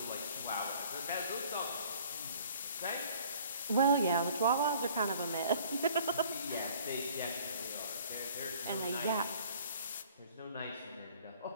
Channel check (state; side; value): inverted; both; correlation -0.53